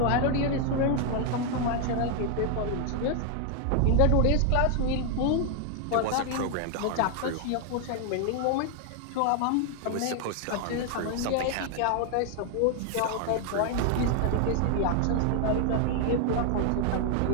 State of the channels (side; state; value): both; different; correlation 0.00